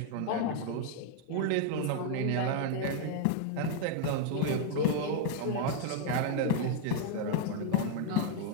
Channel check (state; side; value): different; both; correlation -0.01